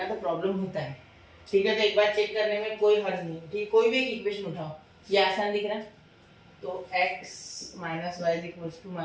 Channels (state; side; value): identical; both; correlation 1.00